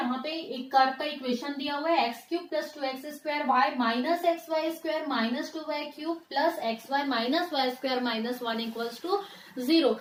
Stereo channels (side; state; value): both; identical; correlation 1.00